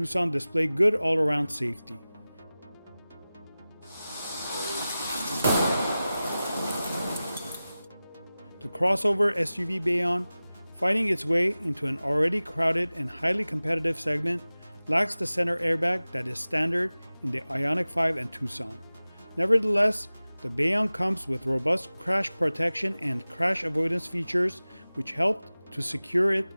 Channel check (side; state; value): both; inverted; correlation -0.97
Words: display good all-around safety. The crossover SUV Bayon, fighting its way into an already crowded and highly competitive segment, lacks the center airbag that is standard in the IONIQ 5 and TUCSON. Nevertheless, the Bayon comes with robust crash protection and crash avoidance features which helped to secure it